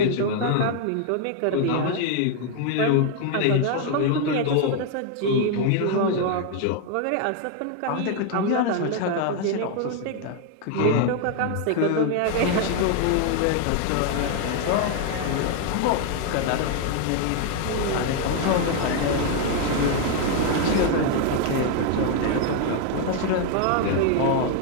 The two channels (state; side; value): different; both; correlation 0.00